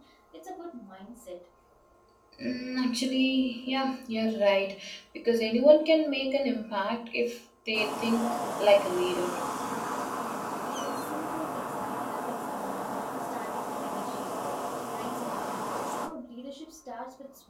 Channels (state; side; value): identical; both; correlation 1.00